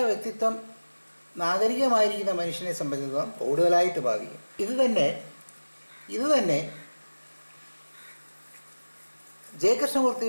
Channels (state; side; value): inverted; both; correlation -1.00